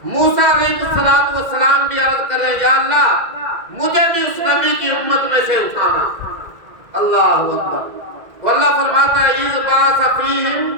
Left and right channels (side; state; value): left; late; 2.1 ms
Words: موسیٰ علیہ السلام بھی عرض کر رہے ہیں یا اللہ مجھے بھی اس نبی کی امت میں سے اٹھانا۔ اللہ اکبر۔ تو اللہ فرماتا ہے اذ بعث فیہم